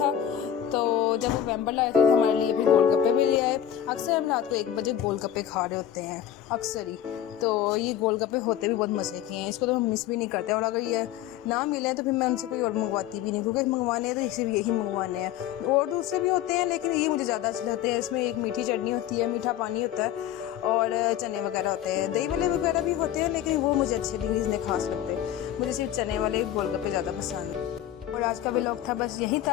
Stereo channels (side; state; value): right; quieter; 10.8 dB